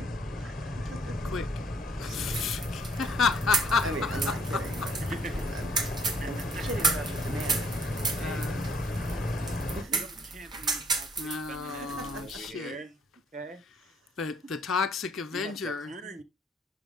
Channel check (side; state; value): both; normal; correlation 0.63